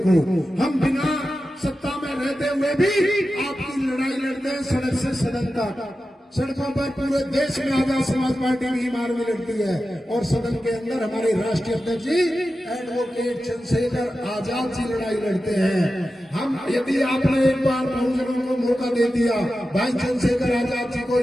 हम बिना सत्ता में रहते हुए भी आपकी लड़ाई लड़ते हैं, सड़क से सदन तक। सड़कों पर पूरे देश में आजाद समाज पार्टी भीम आर्मी लड़ती है, और सदन के अंदर हमारे राष्ट्रीय अध्यक्ष जी एडवोकेट चंद्रशेखर आजाद जी लड़ाई लड़ते हैं। हम यदि आपने एक बार बहुजनों को मौका दे दिया, भाई चंद्रशेखर आजाद जी को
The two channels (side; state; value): both; normal; correlation 0.92